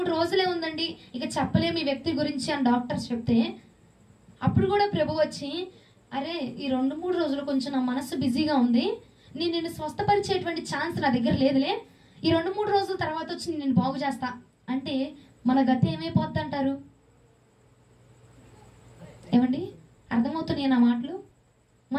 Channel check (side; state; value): both; identical; correlation 1.00